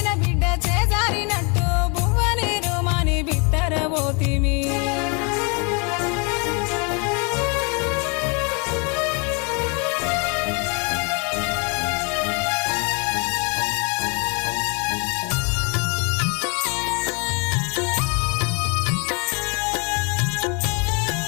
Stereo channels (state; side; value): quieter; right; 33.1 dB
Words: బిడ్డ చేజారినట్టు బువ్వనీరు మాని బిత్తరబోతిమి